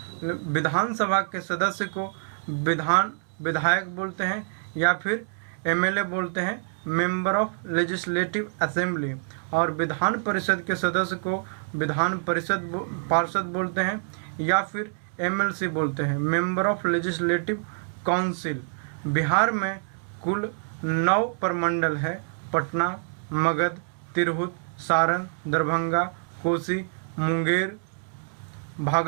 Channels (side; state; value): left; silent; digital silence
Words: विधानसभा के सदस्य को विधायक बोलते हैं या फिर एमएलए बोलते हैं, मेंबर ऑफ लेजिस्लेटिव असेंबली। और विधान परिषद के सदस्य को विधान परिषद पार्षद बोलते हैं या फिर एमएलसी बोलते हैं, member of legislative council. Bihar में कुल 9 प्रमंडल है, पटना, मगध, तिरहुत, सारण, दरभंगा, कोसी, मुंगेर,